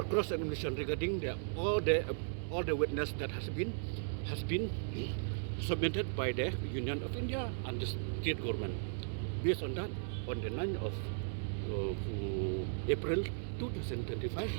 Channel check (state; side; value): silent; left; 53 dB below the other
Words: cross examination regarding all the witness that has been submitted by the Union of India and the state government. Based on that, on the 9th of April 2025,